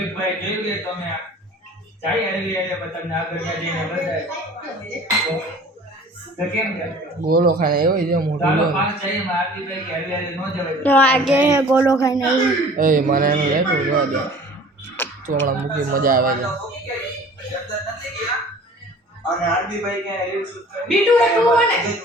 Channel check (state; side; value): normal; both; correlation 0.46